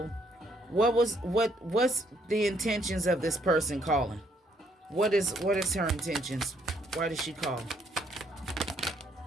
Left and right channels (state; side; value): normal; both; correlation 0.69